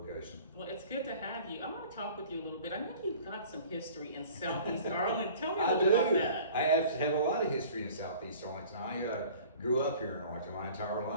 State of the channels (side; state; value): both; inverted; correlation -0.47